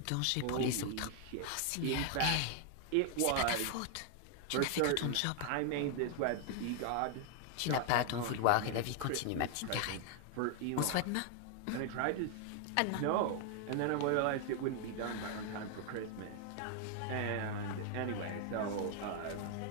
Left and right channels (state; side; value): different; both; correlation 0.00